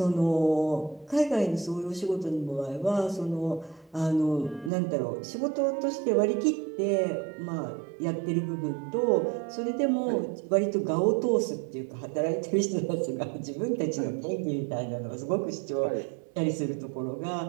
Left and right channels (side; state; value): left; drops out; at 4.7 s